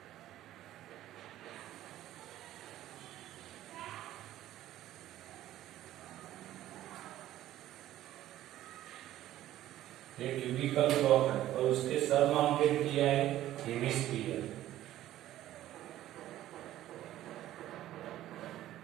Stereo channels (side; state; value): left; quieter; 13.7 dB